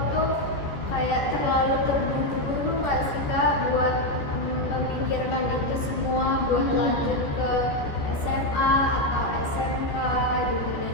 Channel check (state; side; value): late; right; 14 ms